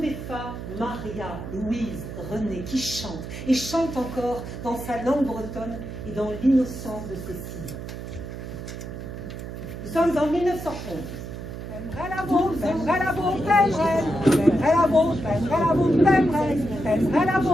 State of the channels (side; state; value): right; noise; hum, 9 dB below the sound